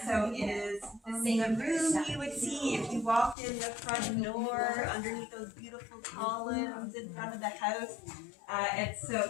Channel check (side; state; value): right; drops out; at 3.4 s